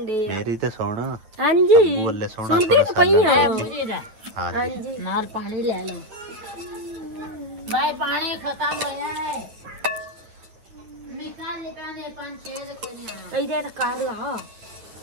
तो सुन। ਹਾਂਜੀ ਅੱਬੂ ਵੱਲੇ ਸੋਹਣਾ ਸੋਹਣਾ ਸਾਲਣ। ਹਾਂਜੀ ਨਾਲ ਪਾਣੀ ਲੈ ਲਓ ਬਾਈ, ਪਾਣੀ ਖਤਮ ਹੋ ਜਾਣਾ ਹੈ। ਨਿਕਾਲ ਲੈ ਪਾਣੀ 5-6 ਦੇ ਕੋਈ ਆਣਾ ਇਹਦੇ ਤਾਂ ਕਰ ਲਾ।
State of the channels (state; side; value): late; left; 9.3 ms